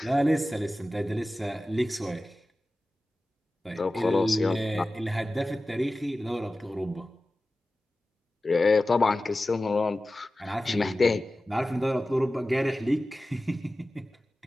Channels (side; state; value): both; normal; correlation 0.95